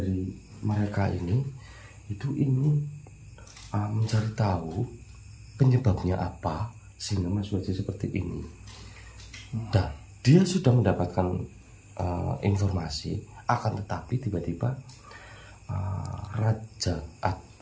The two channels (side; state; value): both; identical; correlation 1.00